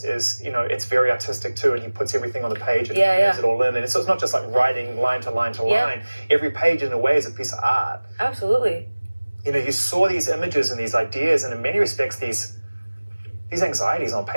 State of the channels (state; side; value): inverted; both; correlation -1.00